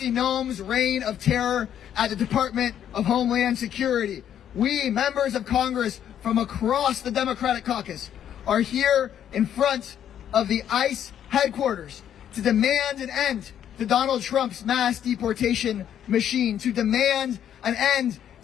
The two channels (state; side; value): quieter; right; 9.9 dB